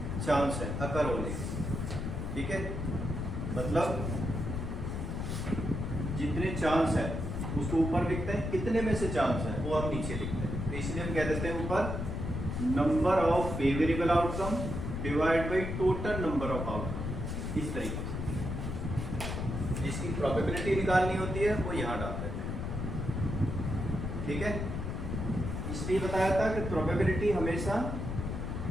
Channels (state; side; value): noise; left; rumble, 3 dB below the sound